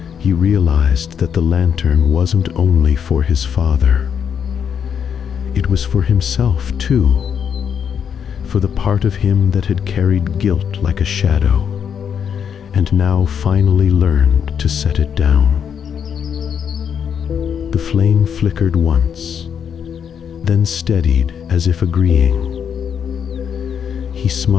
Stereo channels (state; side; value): quieter; right; 7.7 dB